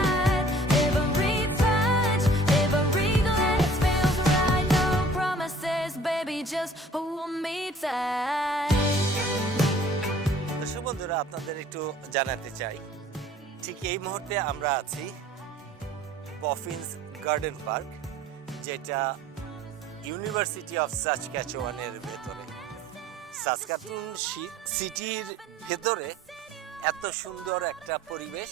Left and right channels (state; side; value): normal; both; correlation 0.52